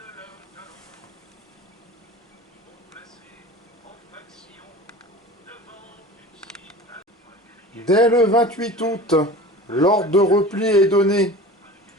Dès le 28 août, l'ordre de repli est donné.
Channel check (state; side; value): normal; both; correlation 0.37